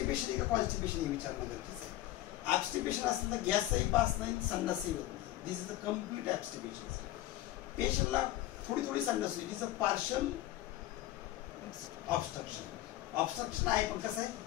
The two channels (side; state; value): right; quieter; 15.0 dB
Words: आहे का कॉन्स्टिपेशन हे विचारणं गरजेचं आहे. ऍब्स्टिपेशन असेल तर गॅसही पास नाही, संडासही होत नाही. दिस इज अ कम्प्लीट ऍब्स्टिपेशन. पेशंटला थोडी संडास होती, तिचं पार्शल ऑब्स्ट्रक्शन आहे, पण कसं आहे,